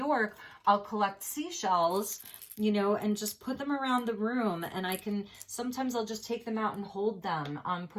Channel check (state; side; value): identical; both; correlation 1.00